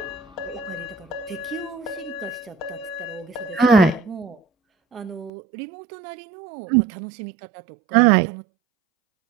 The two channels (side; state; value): left; drops out; at 5.3 s